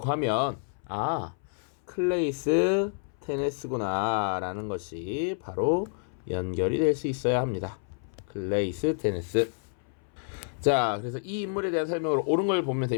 하면 클레이스 테네스구나 라는 것이 바로 연결이 될 수 있어야 합니다. 클레이스 테네스. 자, 그래서 이 인물에 대한 설명으로 옳은 걸 보면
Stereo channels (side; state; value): right; silent; 59 dB below the other